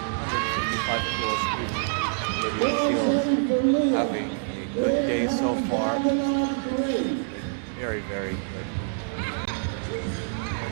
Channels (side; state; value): left; silent; 61 dB below the other